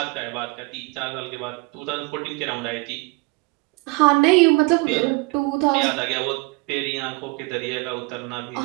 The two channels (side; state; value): left; quieter; 26.9 dB